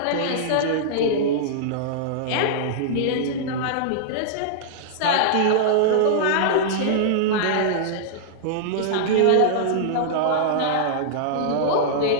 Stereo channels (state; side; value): different; both; correlation -0.02